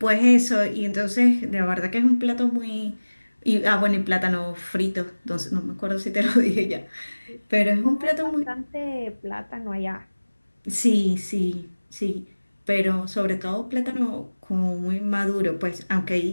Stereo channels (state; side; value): inverted; both; correlation -1.00